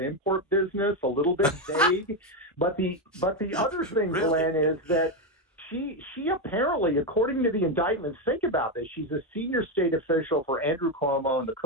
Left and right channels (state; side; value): normal; both; correlation 0.08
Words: business, a little bit vague. But the other thing, really? Glenn, is that she apparently, according to the indictments, think about this, she's a senior state official for Andrew Cuomo and the